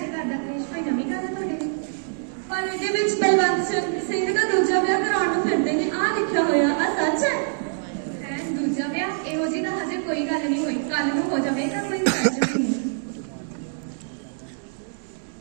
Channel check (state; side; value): silent; left; digital silence